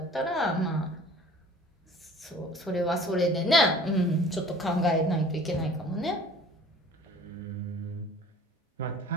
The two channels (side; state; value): both; normal; correlation 0.48